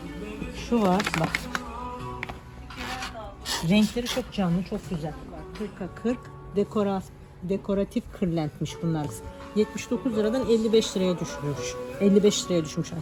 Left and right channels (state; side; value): identical; both; correlation 1.00